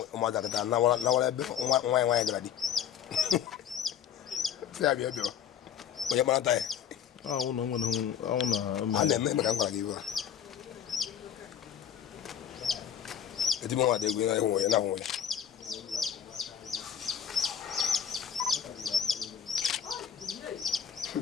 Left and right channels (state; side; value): quieter; right; 8.9 dB